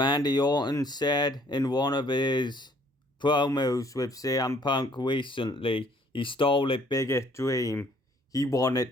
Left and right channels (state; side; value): normal; both; correlation 0.61